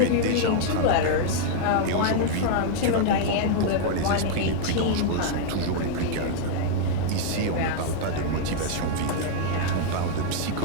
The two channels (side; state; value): both; different; correlation -0.01